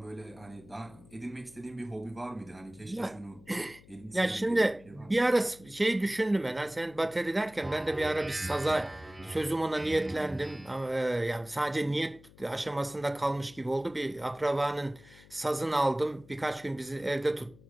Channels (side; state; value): left; noise; hum, 23 dB below the sound